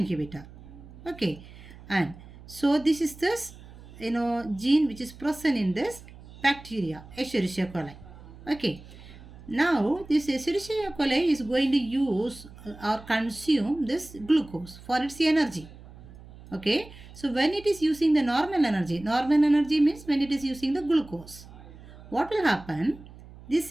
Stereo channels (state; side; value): noise; right; hum, 19 dB below the sound